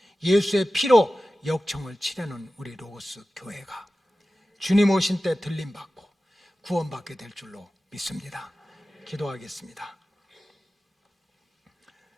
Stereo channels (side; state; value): both; normal; correlation 0.95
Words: 예수의 피로 역청을 칠해놓은 우리 로고스 교회가 주님 오신 때 들림받고 구원받게 될 줄로 믿습니다. 기도하겠습니다.